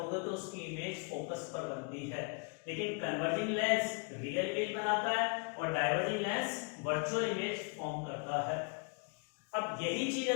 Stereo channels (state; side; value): quieter; right; 34.9 dB